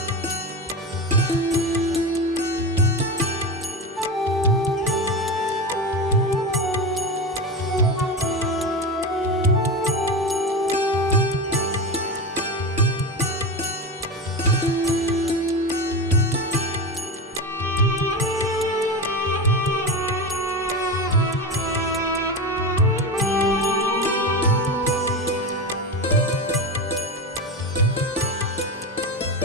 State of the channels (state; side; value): normal; both; correlation 0.22